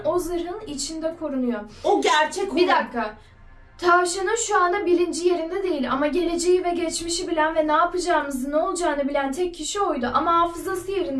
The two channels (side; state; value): both; identical; correlation 1.00